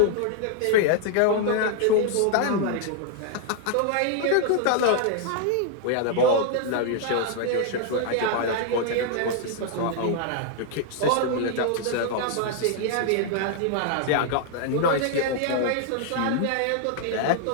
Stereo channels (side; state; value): both; different; correlation 0.00